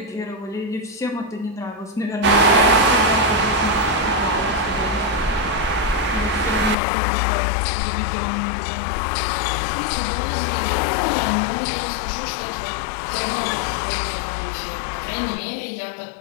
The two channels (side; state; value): right; drops out; at 6.8 s